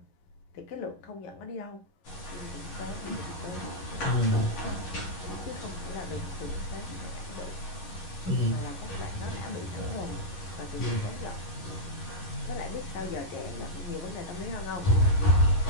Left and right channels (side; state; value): right; late; 11 ms